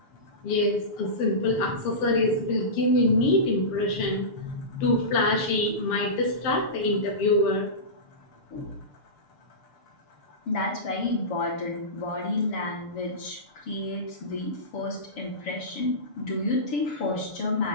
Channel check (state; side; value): late; right; 6.8 ms